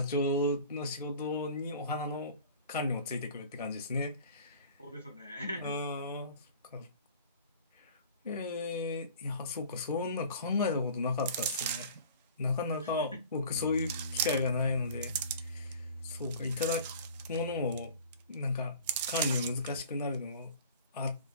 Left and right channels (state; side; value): inverted; both; correlation -0.43